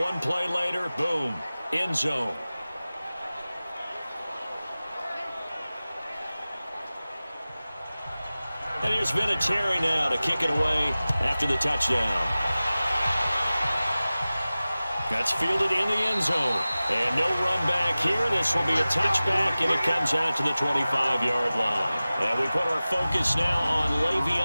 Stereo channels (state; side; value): inverted; both; correlation -0.97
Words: play later, boom, end zone. And here's Vinatieri now to kick it away after the touchdown. That's fielded in the end zone. And no run back here. This will be a touchback, and it comes out to the 25-yard line. And we put our focus now on